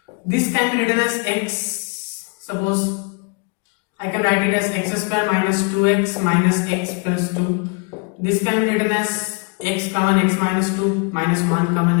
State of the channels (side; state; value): right; quieter; 32.8 dB